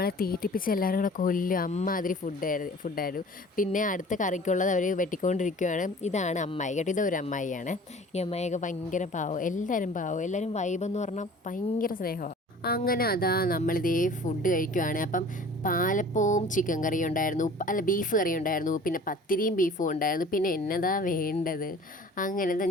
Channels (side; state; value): both; normal; correlation 0.46